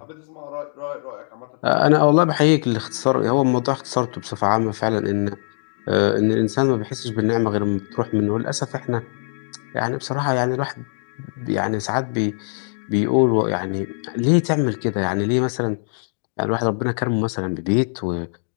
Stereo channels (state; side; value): silent; right; digital silence